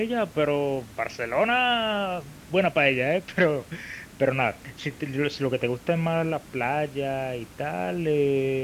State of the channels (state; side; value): identical; both; correlation 1.00